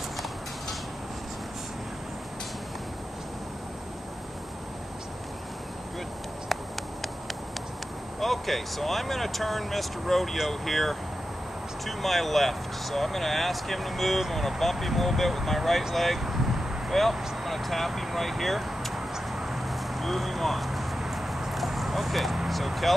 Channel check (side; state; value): both; normal; correlation 0.91